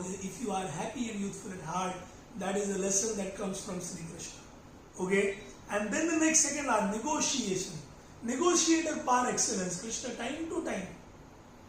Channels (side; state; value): both; identical; correlation 1.00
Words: If you are happy and youthful at heart, that is the lesson that comes from Shri Krishna. Okay, and then the next second are negotiation, negotiator par excellence. Krishna time to time,